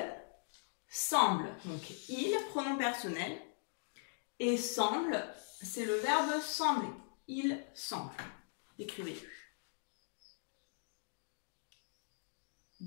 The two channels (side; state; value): right; silent; digital silence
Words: semble. Donc, il, pronom personnel. Et semble, c'est le verbe sembler. Il semble. Écrivez-le.